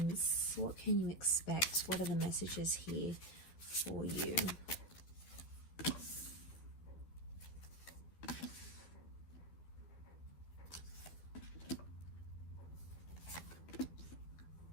What can you expect? What are the messages here for you?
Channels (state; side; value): late; right; 12 ms